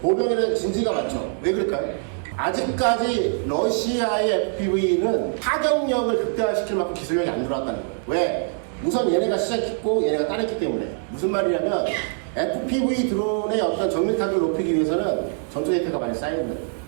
진지가 많죠. 왜 그럴까요? 아직까지 러시아의 FPV는 타격력을 극대화시킬 만큼 기술력이 안 들어왔다는 거예요. 왜? 우선 얘네가 시작했고 얘네가 따랐기 때문에. 무슨 말이냐면 FPV 드론의 어떤 정밀 타격을 높이기 위해서는 전투 데이터가 많이 쌓여야 돼요.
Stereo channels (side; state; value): left; silent; 63 dB below the other